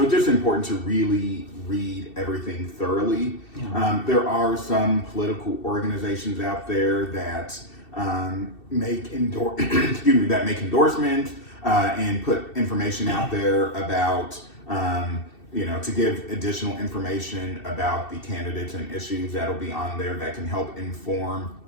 it's just important to really read everything thoroughly. Yeah. There are some political organizations out there that make endorsements and put information out there about to give additional information about the candidates and issues that'll be on there that can help inform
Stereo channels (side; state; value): right; late; 2.7 ms